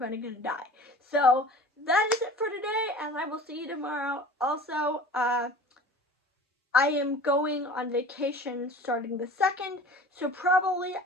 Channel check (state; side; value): normal; both; correlation 0.42